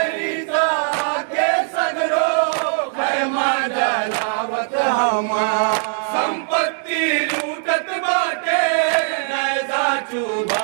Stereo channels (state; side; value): silent; left; digital silence